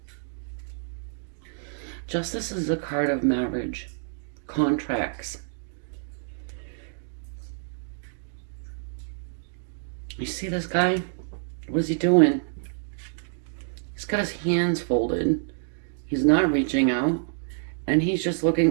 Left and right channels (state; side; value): silent; left; digital silence